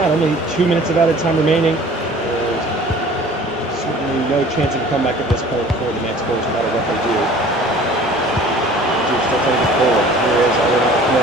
Only 2 minutes of added time remaining. There's certainly no chance of a comeback at this point for the Manticores, no matter what they do. Duke's still trying to get forward. Here is Alvin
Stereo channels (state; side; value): normal; both; correlation 0.48